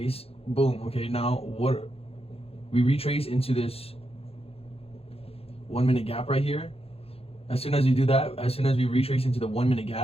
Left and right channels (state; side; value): late; right; 0.28 ms